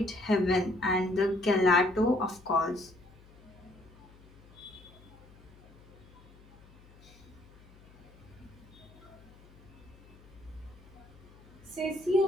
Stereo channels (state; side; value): noise; left; hum, 23 dB below the sound